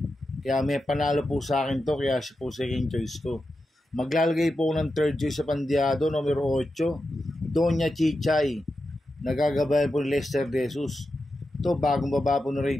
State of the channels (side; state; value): both; normal; correlation 0.89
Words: Kaya may panalo po sa akin to, kaya siya po second choice ko. Maglalagay po ng third choice sa pandiado, numero 8, Doña Chichay. Nagagabayan po ni Lester De Jesus. Ito, bagong baba po ng